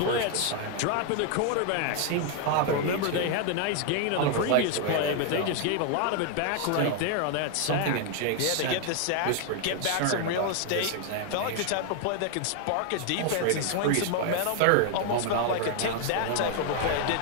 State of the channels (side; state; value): both; different; correlation 0.00